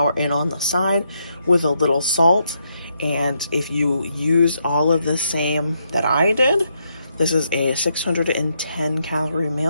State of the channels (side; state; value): both; inverted; correlation -0.78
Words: in on the side with a little salt. And if you use all of the same that I did, this is a 610 calorie